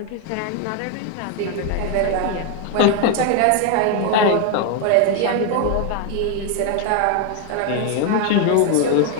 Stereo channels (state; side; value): different; both; correlation 0.01